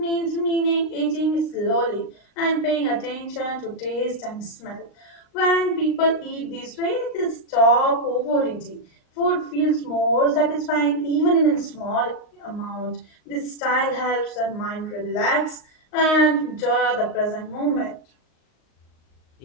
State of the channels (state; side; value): late; right; 38 ms